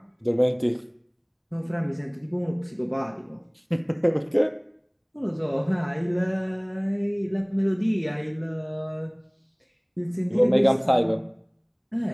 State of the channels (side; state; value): both; identical; correlation 1.00